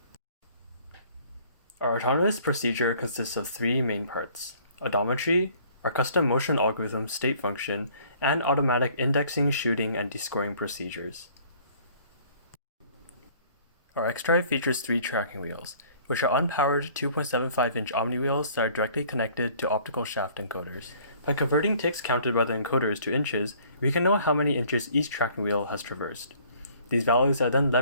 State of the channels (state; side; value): inverted; both; correlation -0.55